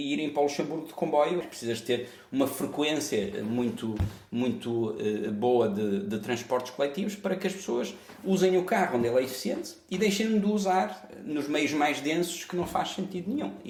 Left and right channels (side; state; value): both; identical; correlation 1.00